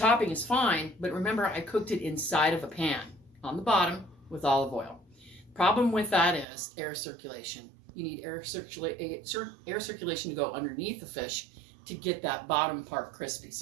is fine, but remember, I cooked it inside of a pan on the bottom with olive oil. Problem with that is air circulation. You need air circulation to go underneath the fish to get that bottom part crispy.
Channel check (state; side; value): drops out; left; at 6.5 s